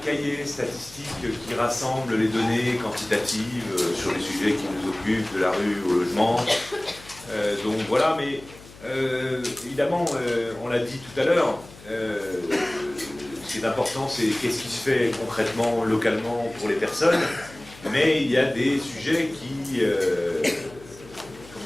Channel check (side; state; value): left; noise; hum, 20 dB below the sound